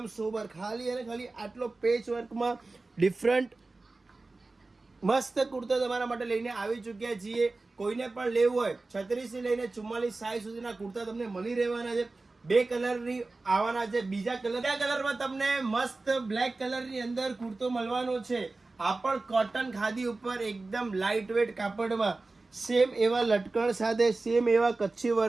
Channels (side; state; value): left; quieter; 3.4 dB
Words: સોબર, ખાલી અને ખાલી આટલો પેચ વર્કમાં ડિફરન્ટ મસ્ત કુર્તા તમારા માટે લઈને આવી ચૂક્યા છીએ. કોઈને પણ લેવું હોય 36 થી લઈને 44 સાઈઝ સુધીના કુર્તા તમને મળી રહેવાના છે. બે કલરની આવવાના છે. બીજા કલરમાં તમને મસ્ત બ્લેક કલરની અંદર કુર્તો મળવાનો છે. આ પણ કોટન ખાદી ઉપર એકદમ લાઇટ વેટ કાપડમાં, સેમ એવા લટકણ સાથે, સેમ એવા કચ્છી